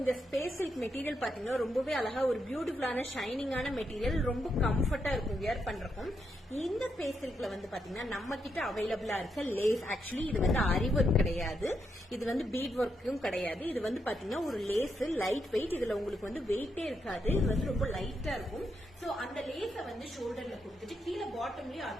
இந்த ஸ்பேஸ் சில்க் மெட்டீரியல் பாத்தீங்கன்னா ரொம்பவே அழகா ஒரு பியூட்டிஃபுல்லான ஷைனிங்கான மெட்டீரியல், ரொம்ப கம்ஃபர்ட்டா இருக்கும் வியர் பண்றதுக்கும். இந்த ஸ்பேஸ் சில்க்ல வந்து பாத்தீங்கன்னா நம்ம கிட்ட அவைலபிளா இருக்க லேஸ், ஆக்சுவலி இது வந்து அரி ஒர்க் கிடையாது, இது வந்து பீட் ஒர்க்கும் கிடையாது. இது வந்து பாத்தீங்கன்னா ஒரு லேஸ், லைட் வெயிட். இதுல உங்களுக்கு வந்து வெயிட்டே இருக்காது, இது வந்து ரொம்ப லைட்டா இருக்கும். சோ அந்த லேஸ வந்து ஷோல்டர்ல கொடுத்துட்டு கீழே பாட்டம்லயும்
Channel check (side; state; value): both; normal; correlation 0.81